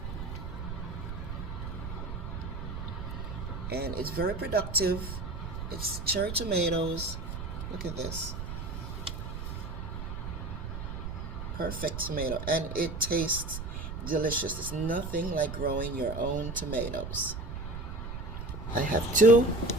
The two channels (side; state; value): right; noise; rumble, 6 dB below the sound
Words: And it's very productive. It's cherry tomatoes. Look at this. Perfect tomato. And it tastes delicious. It's nothing like growing your own tomatoes. I have two.